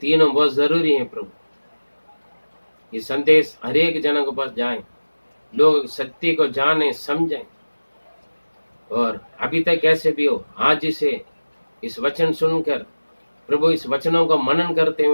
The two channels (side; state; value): both; inverted; correlation -1.00